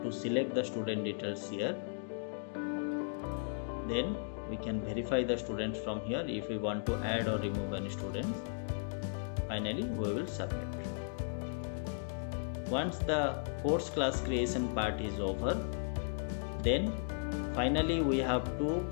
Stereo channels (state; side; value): silent; right; digital silence